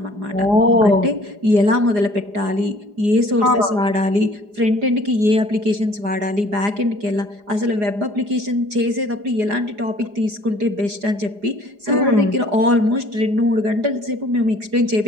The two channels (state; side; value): late; left; 4.9 ms